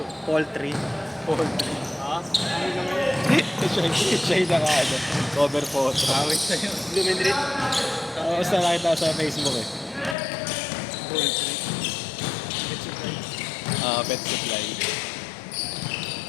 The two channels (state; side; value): drops out; right; at 10.2 s